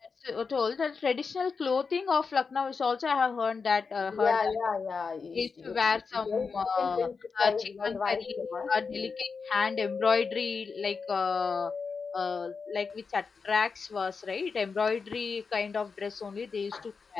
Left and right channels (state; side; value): quieter; right; 5.1 dB